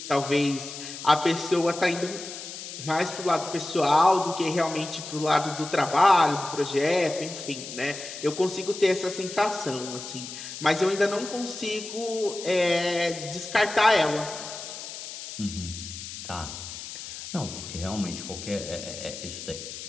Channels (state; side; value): noise; left; hiss, 10 dB below the sound